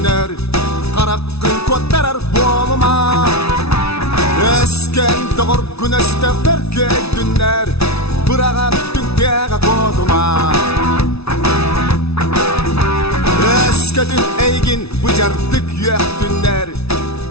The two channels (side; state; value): right; late; 0.79 ms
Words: karakkın kottarar bolma. Esken doğur güneşte berkeydünler, bıragattın tega koduma. Eskedin eygin bıcardık yöktünler,